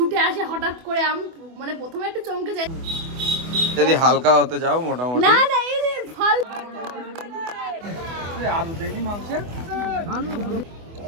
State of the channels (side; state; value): left; late; 24 ms